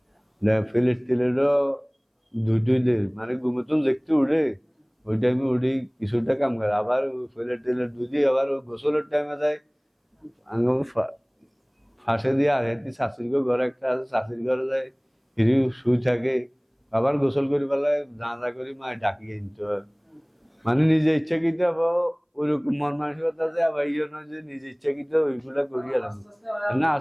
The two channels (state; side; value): identical; both; correlation 1.00